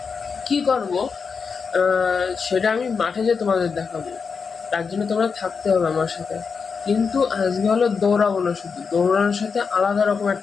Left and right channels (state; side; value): quieter; right; 5.5 dB